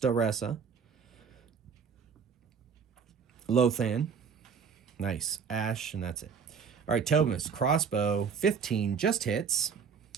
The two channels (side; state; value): left; quieter; 6.4 dB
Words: Lothan. Nice. Ash, and that's it. All right, Tobamus, crossbow, 15, just hits.